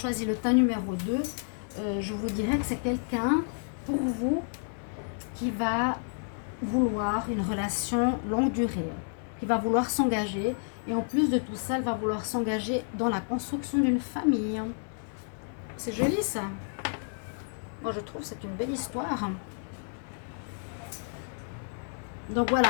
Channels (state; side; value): silent; right; digital silence